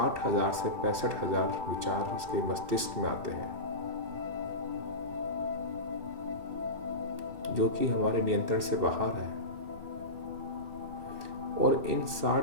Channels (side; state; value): left; late; 2.7 ms